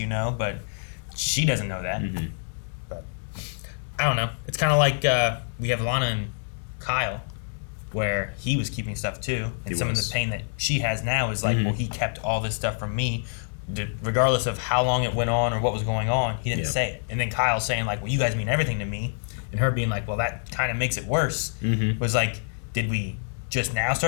know, but she doesn't know that. But I don't know. It's kind of like we have Lana and Kyle. where he was keeping stuff too, and some of the pain that she has now is like, well, he kept all this stuff from me, regardless of how long it went on or what was going on. He didn't say it, and then Kyle saying like, well, you guys mean everything to me, and her being like, well, that kind of makes it worse. Was like, did we just now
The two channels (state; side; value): silent; right; 61 dB below the other